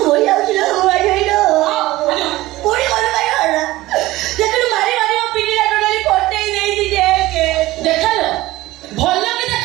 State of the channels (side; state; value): left; quieter; 17.8 dB